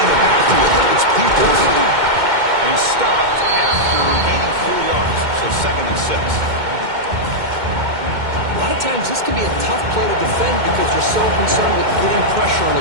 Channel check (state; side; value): late; left; 2.1 ms